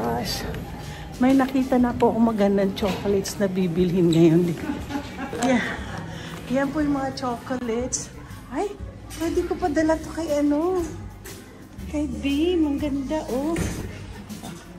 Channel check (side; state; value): both; identical; correlation 1.00